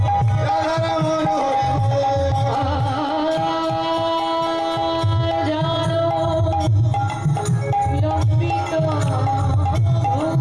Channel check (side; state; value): right; noise; rumble, 21 dB below the sound